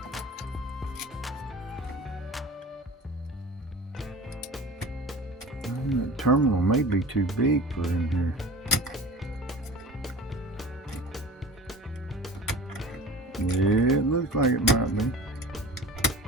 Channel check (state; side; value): normal; both; correlation 0.38